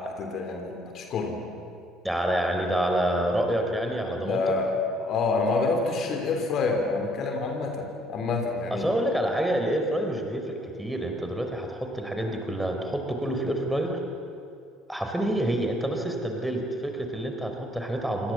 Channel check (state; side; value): normal; both; correlation 0.65